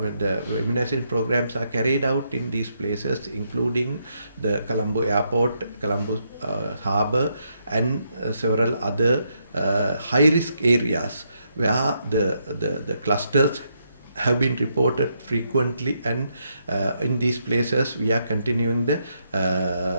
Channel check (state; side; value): inverted; both; correlation -0.78